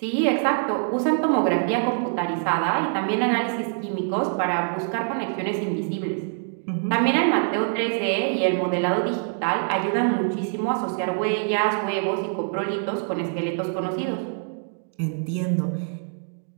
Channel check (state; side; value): silent; left; 62 dB below the other